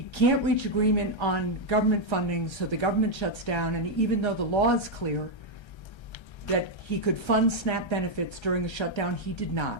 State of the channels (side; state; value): right; late; 1.3 ms